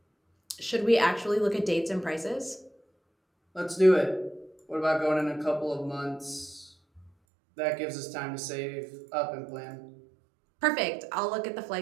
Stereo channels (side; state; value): left; drops out; at 7.1 s